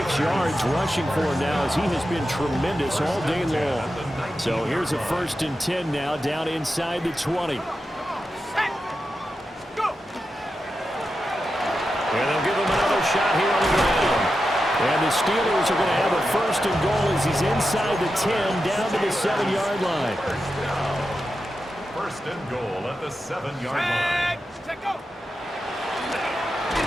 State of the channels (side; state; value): both; normal; correlation 0.90